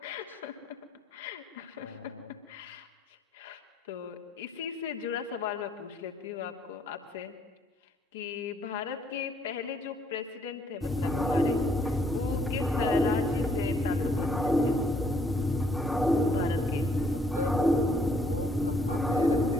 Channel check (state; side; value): normal; both; correlation 0.67